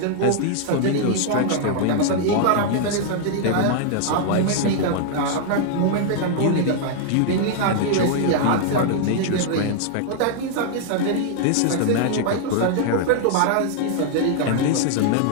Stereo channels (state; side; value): different; both; correlation 0.00